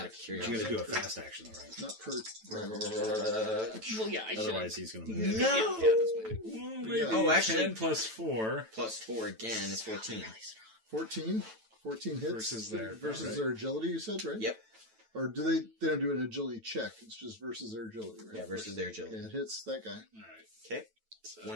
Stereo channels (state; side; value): late; left; 9.1 ms